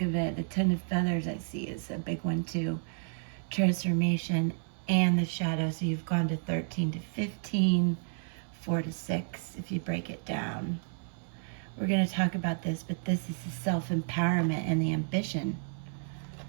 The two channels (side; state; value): left; silent; 57 dB below the other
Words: of it, the 10 of feathers I see is a big one too. Transformation and the shadow, so you've gone to 13 to 15, 4 to 6, if you break it down. We're going to talk about this, but this is the self-empowerment and the ambition